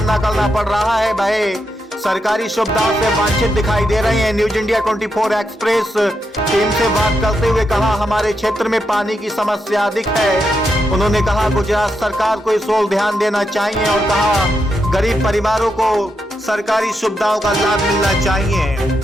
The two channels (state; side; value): normal; both; correlation 0.83